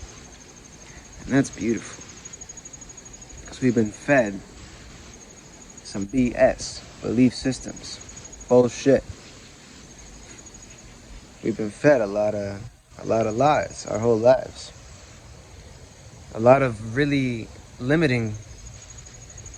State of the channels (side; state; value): both; identical; correlation 1.00